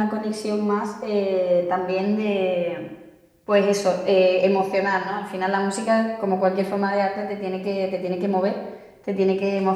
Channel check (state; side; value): identical; both; correlation 1.00